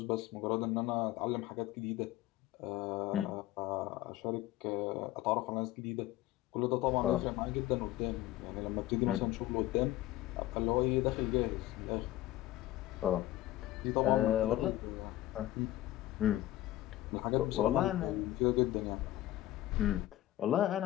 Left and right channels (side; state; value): right; quieter; 15.3 dB